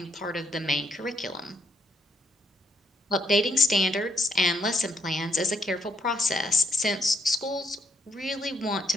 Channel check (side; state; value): both; normal; correlation 0.74